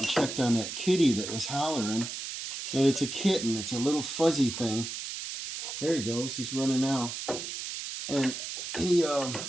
checked on that kitty that was hollering, and it's a kitten. It's a little fuzzy thing. There he goes. He's running now. And he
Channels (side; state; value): right; noise; hiss, 6 dB below the sound